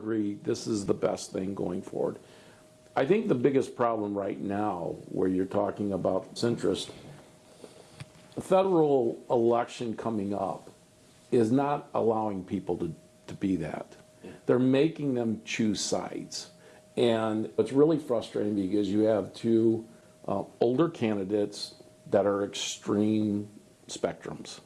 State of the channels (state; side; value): identical; both; correlation 1.00